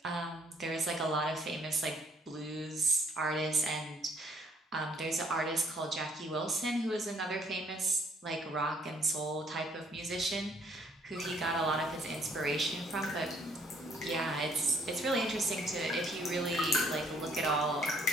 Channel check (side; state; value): both; normal; correlation 0.64